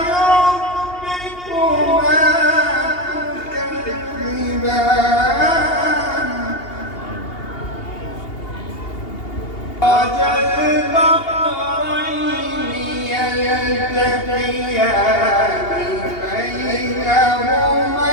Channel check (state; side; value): late; right; 2.8 ms